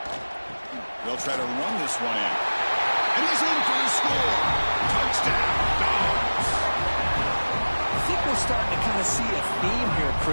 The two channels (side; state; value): both; inverted; correlation -1.00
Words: They'll try to run this one in. And he's in for the score. Touchdown, Dogs. I think we're starting to kind of see a theme here,